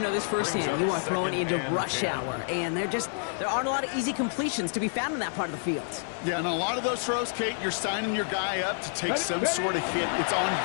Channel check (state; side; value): silent; right; 59 dB below the other